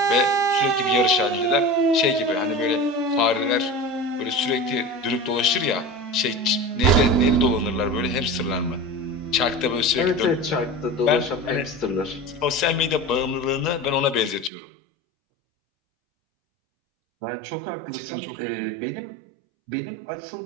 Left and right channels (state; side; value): drops out; left; at 14.5 s